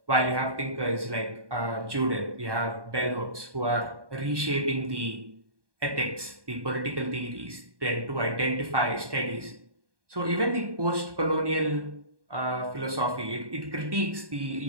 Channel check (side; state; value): left; late; 1.2 ms